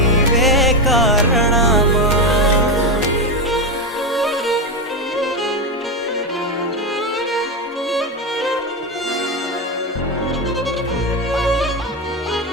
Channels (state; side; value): normal; both; correlation 0.12